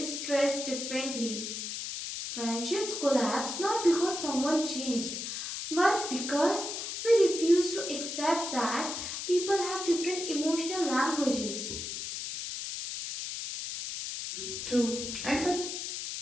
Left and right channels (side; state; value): left; noise; hiss, 5 dB below the sound